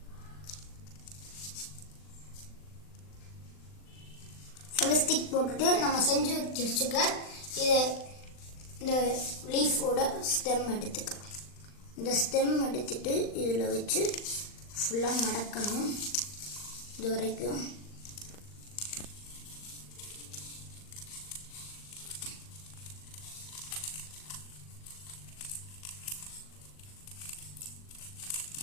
ஃபெவிஸ்டிக் போட்டுட்டு நம்ம செஞ்சு வச்சுக்க இதை இந்த லீஃபோட ஸ்டெம் எடுத்துக்கலாம். இந்த ஸ்டெம் எடுத்துட்டு இதில் வச்சு ஃபுல்லாக மடக்கணும். இது வரைக்கும்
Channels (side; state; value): right; late; 39 ms